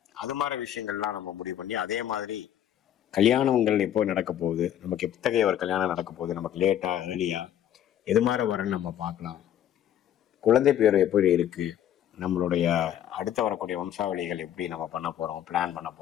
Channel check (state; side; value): quieter; right; 10.7 dB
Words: அது மாதிரி விஷயங்கள்லாம் நம்ம முடிவு பண்ணி அதே மாதிரி கல்யாணங்கள் எப்போ நடக்க போகுது, நமக்கு எத்தகைய ஒரு கல்யாணம் நடக்க போகுது, நமக்கு லேட்டா ஏர்லியா, எது மாதிரி வரன்னு நம்ம பார்க்கலாம், குழந்தை பேர் எப்படி இருக்கு, நம்மளுடைய அடுத்த வரக்கூடிய வம்சாவளிகள் எப்படி நம்ம பண்ண போறோம், பிளான் பண்ண